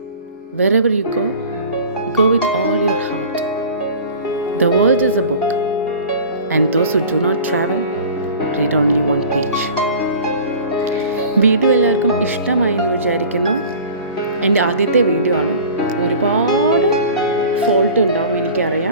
Wherever you go with all your heart. The world is a book, and those who do not travel read only one page. Video എല്ലാവർക്കും ഇഷ്ടമായി എന്ന് വിചാരിക്കുന്നു. എൻ്റെ ആദ്യത്തെ വീഡിയോ ആണ്. ഒരുപാട് ഫോൾട്ട് ഉണ്ടാവും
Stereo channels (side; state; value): both; inverted; correlation -0.41